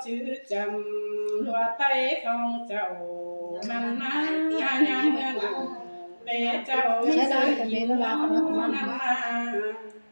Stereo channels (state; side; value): inverted; both; correlation -1.00